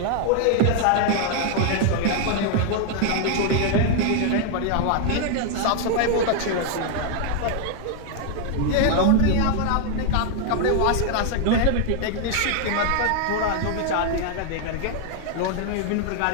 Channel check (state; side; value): different; both; correlation 0.00